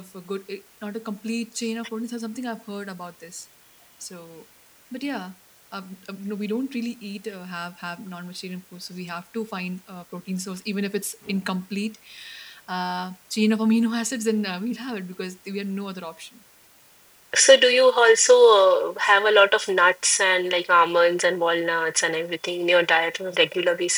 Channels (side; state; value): both; identical; correlation 1.00